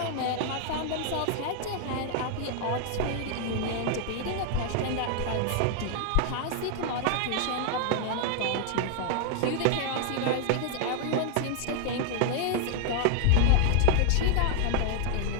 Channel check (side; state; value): both; different; correlation 0.00